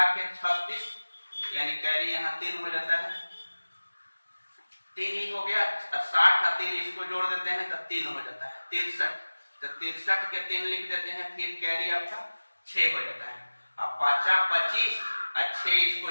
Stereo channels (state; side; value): inverted; both; correlation -1.00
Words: के 36 यानी कैरी यहाँ 3 हो जाता है, 3 ही हो गया, 60 और 3 इसको जोड़ देते हैं तो 3 हो जाता है 63, तो 63 के 3 लिख देते हैं, फिर कैरी आपका 6 हो जाता है। अब 5 25 और 6 इसको